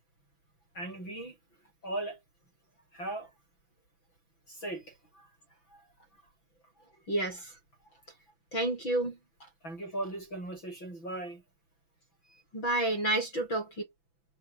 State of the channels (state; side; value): late; right; 6.0 ms